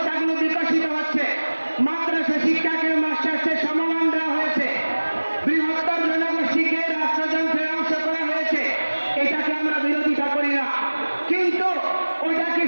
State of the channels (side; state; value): both; inverted; correlation -1.00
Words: বিকশিত হচ্ছে। মাদ্রাসা শিক্ষাকে মাস্টার্সের সমমান দেওয়া হয়েছে। বৃহত্তর জনগোষ্ঠীকে রাষ্ট্রযন্ত্রে অংশ করা হয়েছে। এটাকে আমরা বিরোধিতা করি না, কিন্তু ওইটাকে